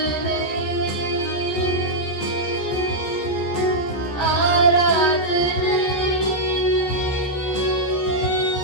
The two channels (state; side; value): late; right; 14 ms